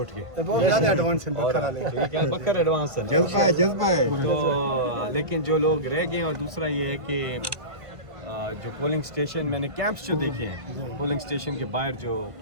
गए। बहुत ज़्यादा एडवांस है बकर एडवांस है, जज्बा है। तो लेकिन जो लोग रह गए, और दूसरा ये है कि जो पोलिंग स्टेशन मैंने कैंप्स जो देखे हैं, पोलिंग स्टेशन के बाहर जो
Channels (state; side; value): late; left; 1.5 ms